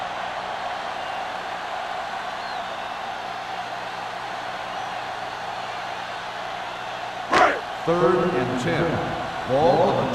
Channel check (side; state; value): both; identical; correlation 1.00